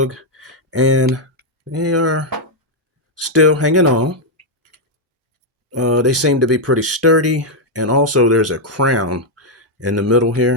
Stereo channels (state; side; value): normal; both; correlation -0.01